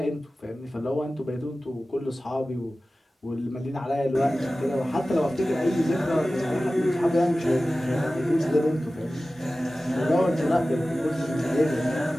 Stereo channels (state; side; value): normal; both; correlation 0.96